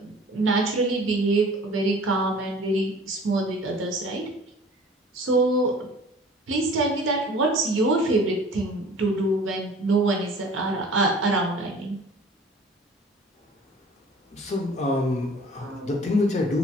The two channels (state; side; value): normal; both; correlation 0.47